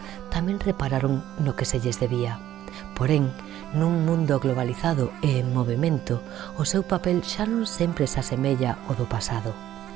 tamén repararon no que se lles debía. Porén, nun mundo globalizado e en movimento, o seu papel xa non sempre se asemella ao do pasado.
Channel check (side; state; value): left; quieter; 12.4 dB